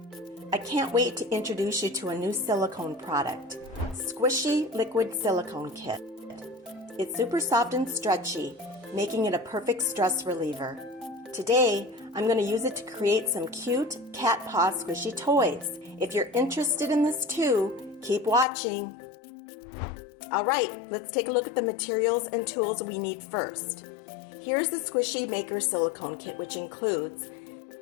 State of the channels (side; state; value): right; drops out; at 18.4 s